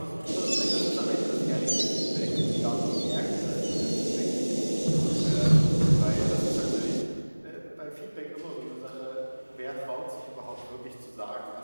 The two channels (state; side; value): inverted; both; correlation -1.00